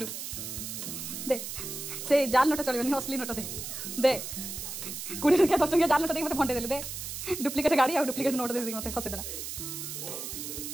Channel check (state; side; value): noise; right; hiss, 7 dB below the sound